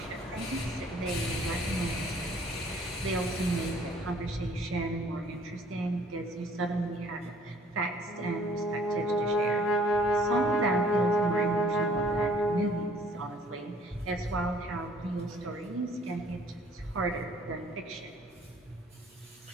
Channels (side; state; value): both; normal; correlation 0.57